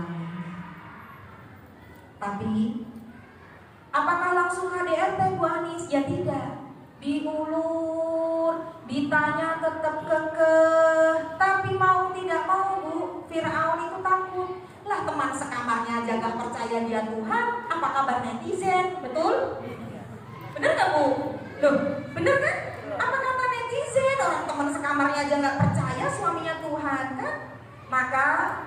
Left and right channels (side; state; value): both; identical; correlation 1.00